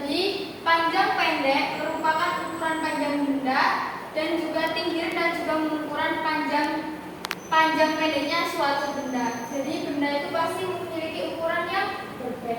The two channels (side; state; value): both; identical; correlation 1.00